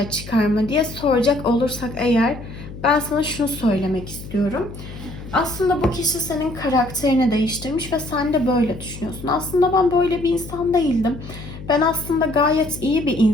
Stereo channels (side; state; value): left; noise; hum, 13 dB below the sound